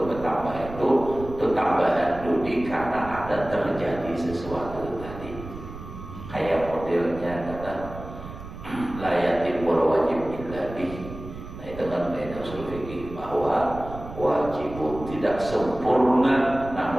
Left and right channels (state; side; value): noise; right; rumble, 12 dB below the sound